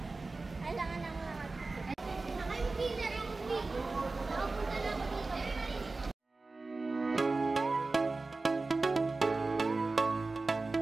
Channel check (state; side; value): quieter; left; 3.6 dB